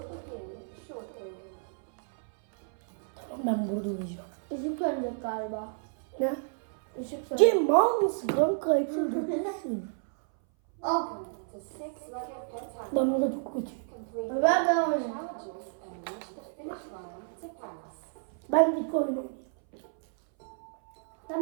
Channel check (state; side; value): silent; left; 57 dB below the other